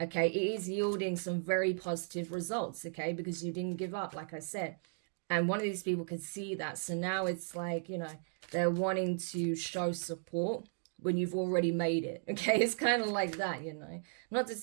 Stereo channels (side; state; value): left; silent; digital silence